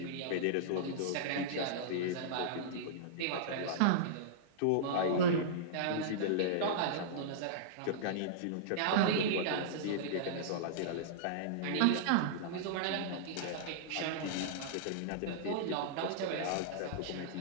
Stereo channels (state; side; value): different; both; correlation -0.03